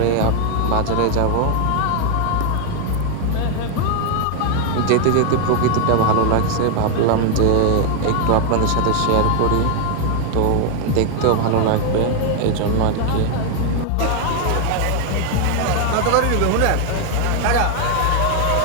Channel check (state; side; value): different; both; correlation 0.00